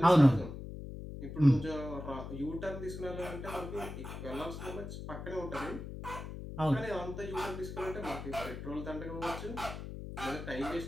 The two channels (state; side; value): noise; left; hum, 9 dB below the sound